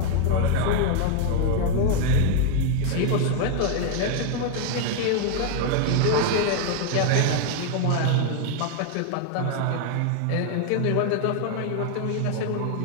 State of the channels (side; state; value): both; different; correlation 0.00